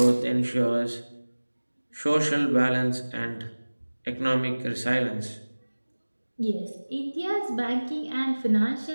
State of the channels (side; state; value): both; inverted; correlation -1.00